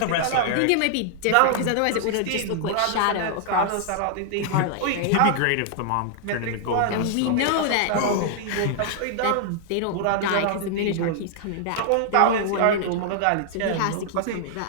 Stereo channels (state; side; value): different; both; correlation -0.01